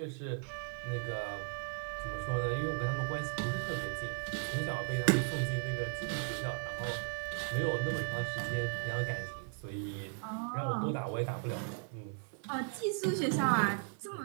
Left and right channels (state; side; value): silent; left; 53 dB below the other